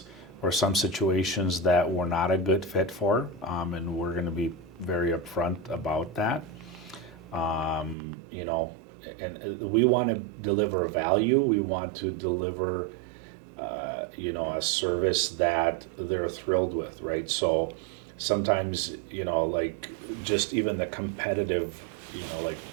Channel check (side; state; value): left; drops out; at 8.0 s